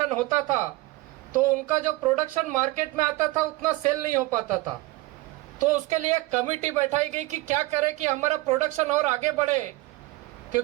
होता था तो उनका जो प्रोडक्शन मार्केट में आता था उतना सेल नहीं हो पाता था। तो उसके लिए एक कमेटी बैठाई गई कि क्या करें कि हमारा प्रोडक्शन और आगे बढ़े,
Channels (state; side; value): quieter; left; 20.1 dB